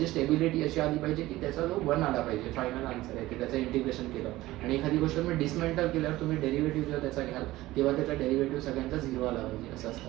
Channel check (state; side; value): quieter; left; 17.3 dB